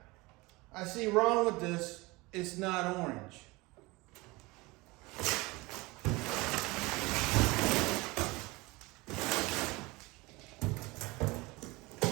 I see wrong with this, it's not orange.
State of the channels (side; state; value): left; quieter; 23.2 dB